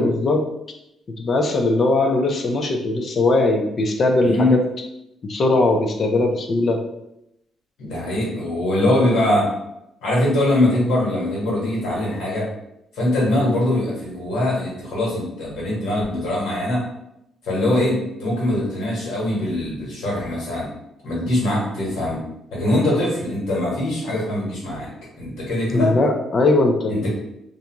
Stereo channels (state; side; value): normal; both; correlation 0.72